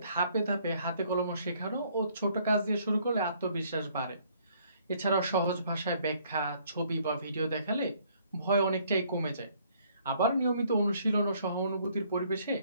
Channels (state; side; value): inverted; both; correlation -0.64